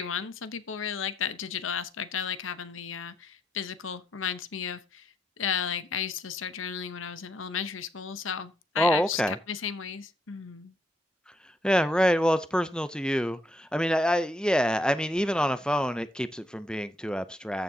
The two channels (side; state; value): both; normal; correlation 0.75